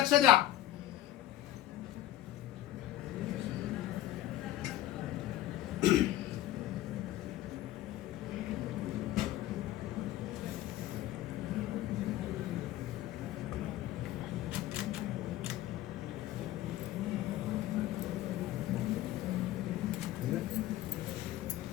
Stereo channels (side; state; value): right; quieter; 13.9 dB